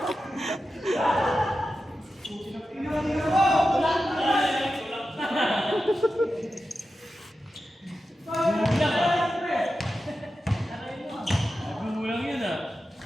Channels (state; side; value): normal; both; correlation 0.91